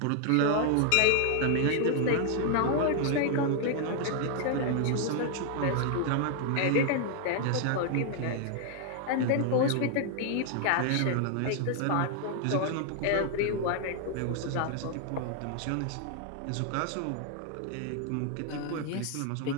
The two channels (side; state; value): both; different; correlation 0.00